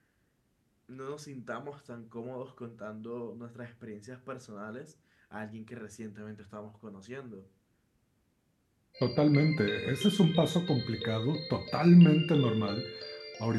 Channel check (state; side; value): identical; both; correlation 1.00